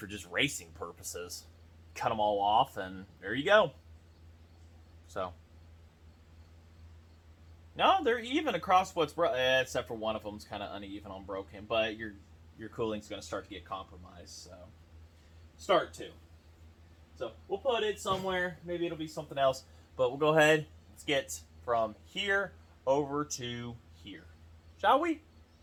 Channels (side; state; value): both; identical; correlation 1.00